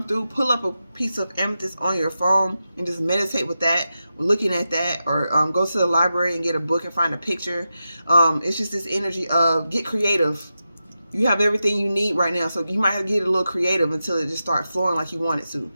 through. Pull up a piece of amethyst on your phone and just meditate with that, looking at that, or go to the library and get a book and find a picture. It's just this energy of get creative. You have everything you need right now, so you might have to get a little creative until it just starts flowing like you want it to.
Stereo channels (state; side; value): inverted; both; correlation -0.90